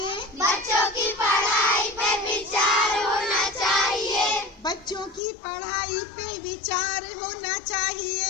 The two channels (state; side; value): drops out; right; at 5.2 s